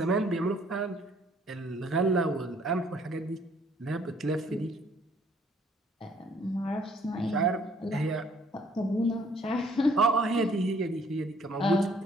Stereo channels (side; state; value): both; normal; correlation 0.61